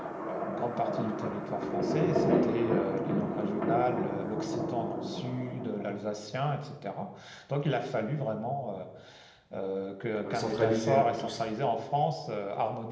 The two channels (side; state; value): both; identical; correlation 1.00